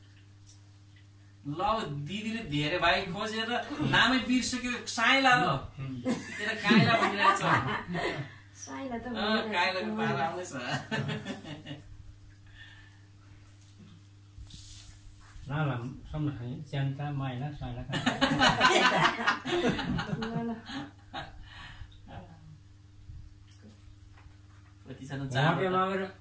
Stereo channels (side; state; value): both; identical; correlation 1.00